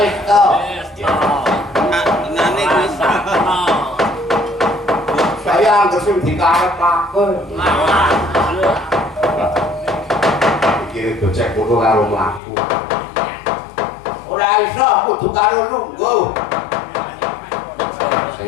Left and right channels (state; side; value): drops out; right; at 12.4 s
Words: to. Nane wis. Saya anggere sing dikarepake. Iki gocek kudu karo mlaku. Ora iso kudu karo lungguh.